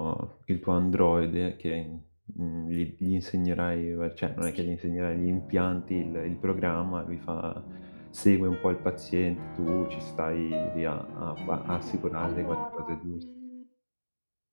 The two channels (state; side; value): inverted; both; correlation -1.00